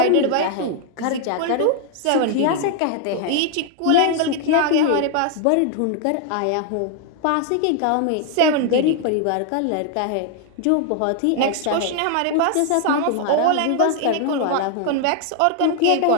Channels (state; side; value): different; both; correlation 0.00